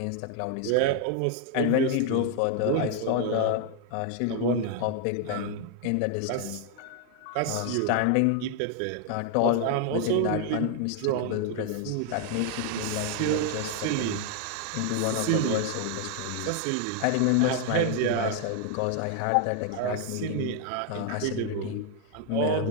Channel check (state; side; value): different; both; correlation 0.00